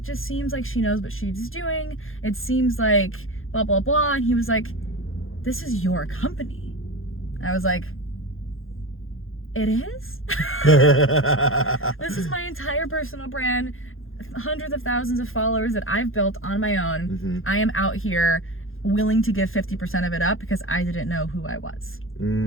just seems like she knows what she's doing. It seems like blah, blah, blah." And he was like, "This is your company." I was like, "It is?" This is my entire personal brand, hundreds of thousands of followers that I've built on my own. I am out here willing to give 50% of it up because I didn't know who I was.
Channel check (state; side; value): late; right; 0.60 ms